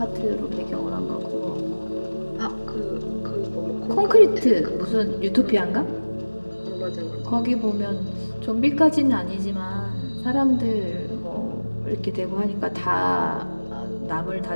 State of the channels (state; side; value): inverted; both; correlation -1.00